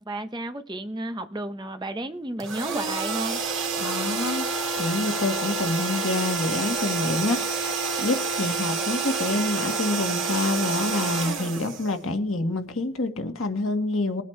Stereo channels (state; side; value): normal; both; correlation 0.40